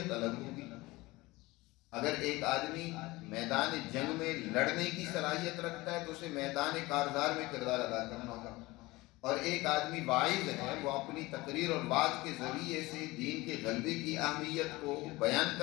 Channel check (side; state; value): right; quieter; 21.0 dB